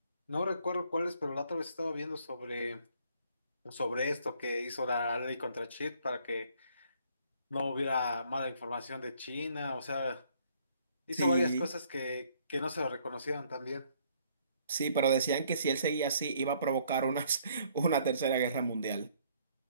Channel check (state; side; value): inverted; both; correlation -0.64